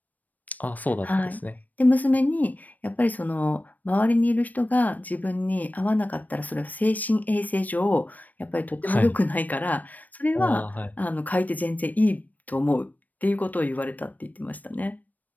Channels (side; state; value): right; late; 0.081 ms